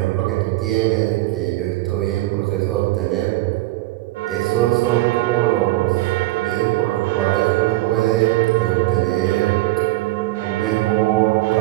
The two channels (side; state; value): left; quieter; 18.6 dB